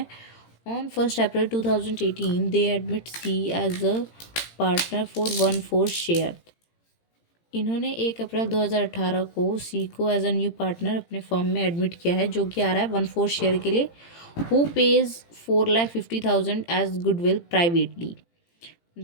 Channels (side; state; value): right; late; 18 ms